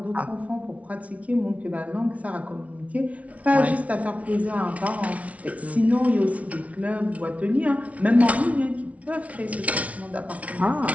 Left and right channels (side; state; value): left; late; 0.066 ms